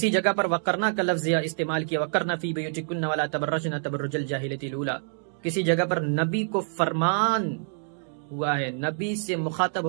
جگہ پر وقرنا کا لفظ استعمال کیا، وقرنا فی بیوتکن ولا تبرجن تبرج الجاہلیۃ الاولی۔ کسی جگہ پر نبی کو فرمان ہوا ہے، نبی سے مخاطب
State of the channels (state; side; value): silent; left; digital silence